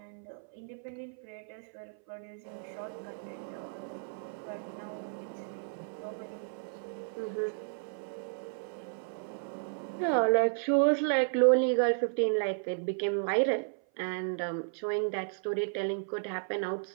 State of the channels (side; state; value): left; silent; 56 dB below the other